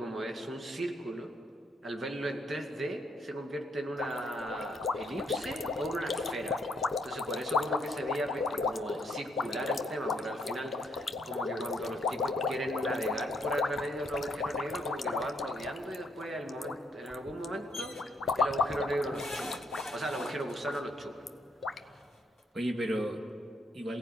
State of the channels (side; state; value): both; normal; correlation 0.73